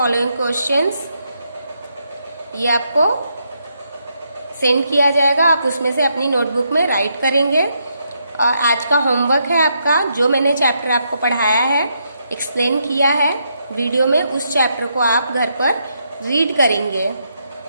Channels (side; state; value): both; inverted; correlation -0.78